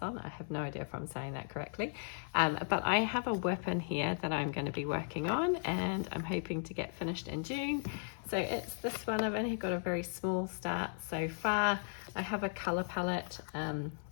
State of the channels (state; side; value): silent; right; 54 dB below the other